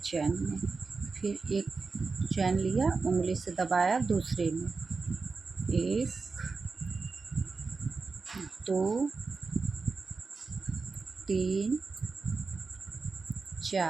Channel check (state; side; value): quieter; left; 4.3 dB